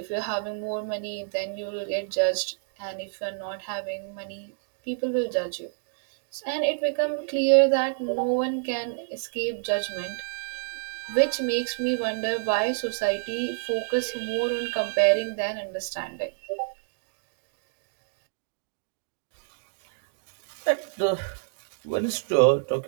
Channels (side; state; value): left; silent; digital silence